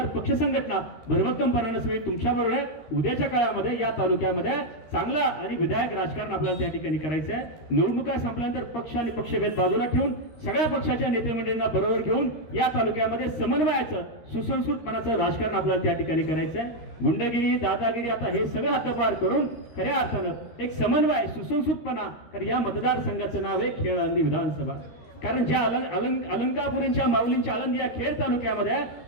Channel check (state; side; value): late; right; 13 ms